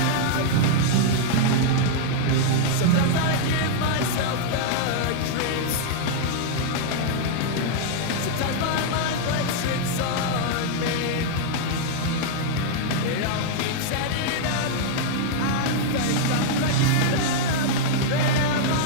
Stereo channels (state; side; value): different; both; correlation -0.01